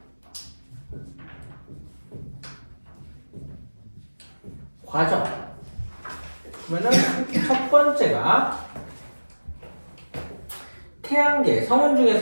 과정. 그러면은 첫 번째가 태양계 성운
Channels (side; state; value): both; inverted; correlation -1.00